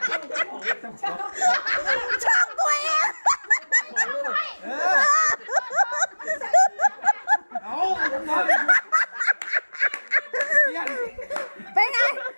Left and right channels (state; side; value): inverted; both; correlation -1.00